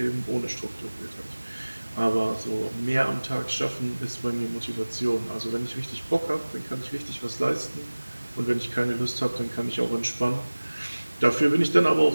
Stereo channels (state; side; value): inverted; both; correlation -1.00